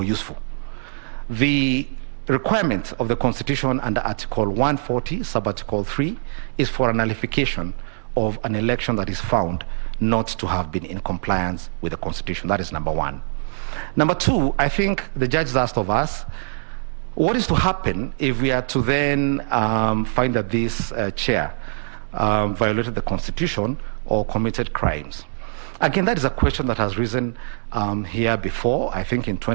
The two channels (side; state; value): left; silent; digital silence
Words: useful. The requirement of the Constitution under Article 140, sub-article 3, is for a nullification of an election that is found not to have been in compliance with the Constitution. That is number one. Number two, I think the judges asked of us, what is to happen if we are to then find that this chair violated the Constitution or committed crimes? Again, that is a question that has risen here before. I think in